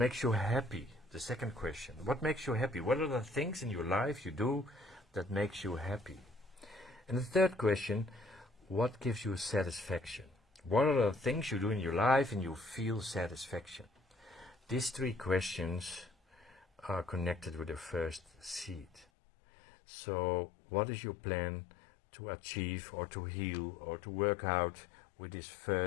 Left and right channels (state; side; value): drops out; right; at 19.1 s